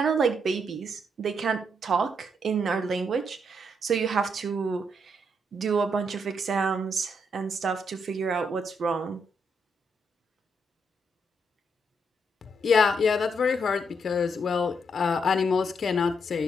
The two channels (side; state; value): both; normal; correlation 0.76